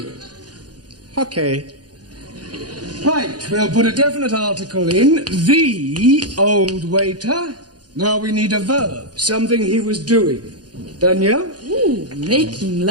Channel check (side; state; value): left; late; 0.69 ms